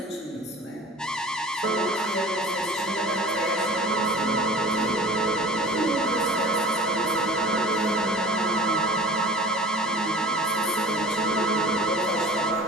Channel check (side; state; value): both; normal; correlation 0.42